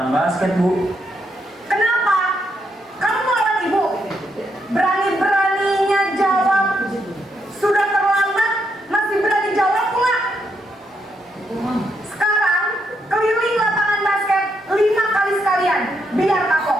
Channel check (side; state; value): both; normal; correlation 0.79